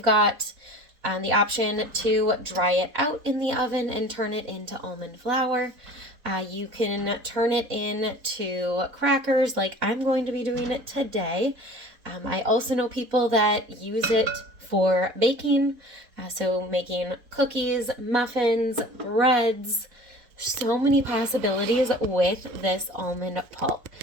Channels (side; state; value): left; late; 4.2 ms